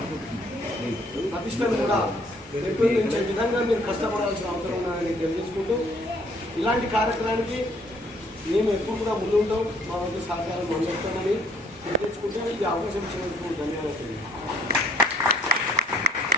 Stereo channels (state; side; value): normal; both; correlation 0.62